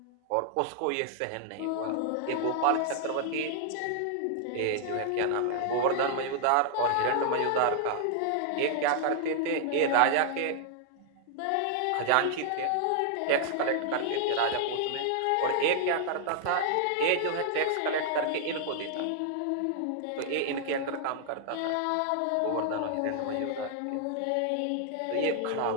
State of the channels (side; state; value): both; different; correlation 0.00